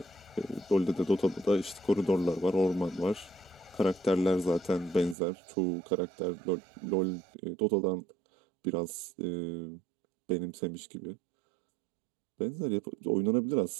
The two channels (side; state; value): left; drops out; at 5.2 s